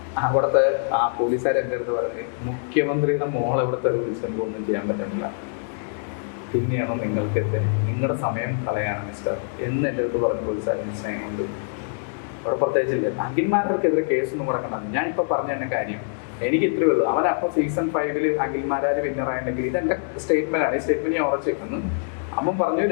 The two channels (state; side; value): silent; right; 62 dB below the other